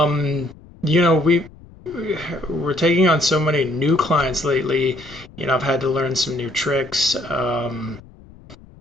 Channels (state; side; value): noise; left; rumble, 22 dB below the sound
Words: taking on so many new clients lately. I've had to learn some new tricks.